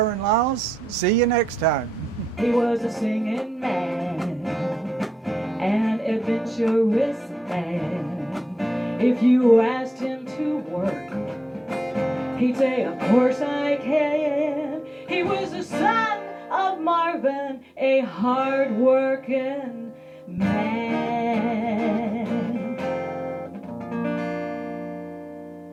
Liles. See you next time. He was a singing man, an adventurous man. If you asked him to work, he'd say, of course I can. He was the son of Marvin, a hard-working man.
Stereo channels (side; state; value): both; normal; correlation 0.89